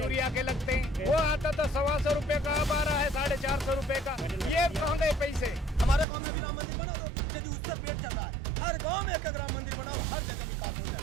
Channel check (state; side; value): drops out; left; at 6.1 s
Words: के लगते हैं, वो आता था 125 रुपए का, अब आ रहा है 450 रुपए का। ये कहाँ गए पैसे? हमारे गांव में भी राम मंदिर बना दो, यदि उससे पेट चल रहा है। हर गांव में एक राम मंदिर बनाओ, हर जगह विकास हो